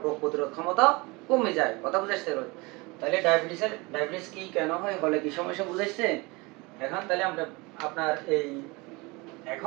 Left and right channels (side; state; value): left; quieter; 25.3 dB